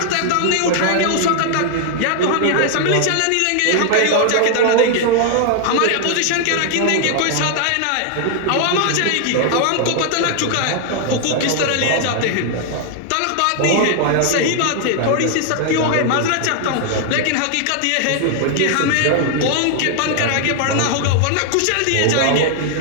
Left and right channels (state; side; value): different; both; correlation 0.00